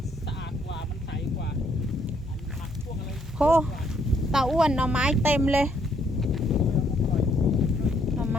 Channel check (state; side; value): normal; both; correlation 0.70